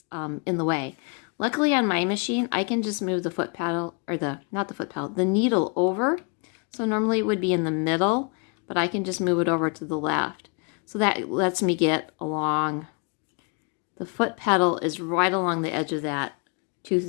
in the way. Luckily on my machine, I can just move the foot pedal, or not the foot pedal, the needle over. So normally it would be in the middle, but I can just move it over to the left. So that lets me get along. The foot pedal is right along the edge of that tooth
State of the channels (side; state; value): right; quieter; 35.7 dB